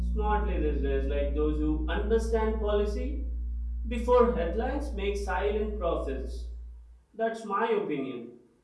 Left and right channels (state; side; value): identical; both; correlation 1.00